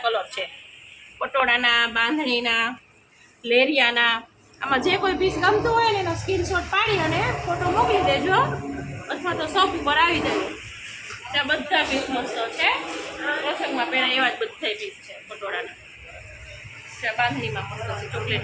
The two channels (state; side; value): identical; both; correlation 1.00